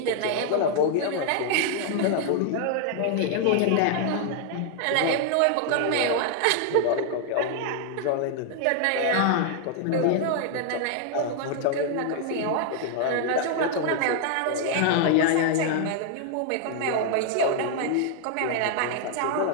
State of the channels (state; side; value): different; both; correlation 0.00